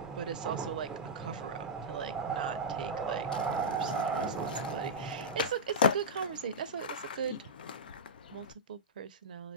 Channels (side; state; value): both; normal; correlation -0.11